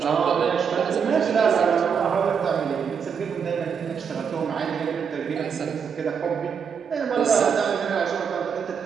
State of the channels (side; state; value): left; quieter; 6.8 dB